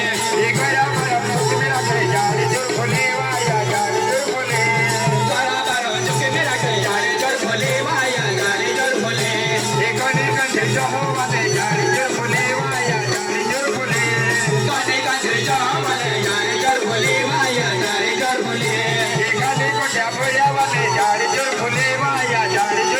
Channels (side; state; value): both; identical; correlation 1.00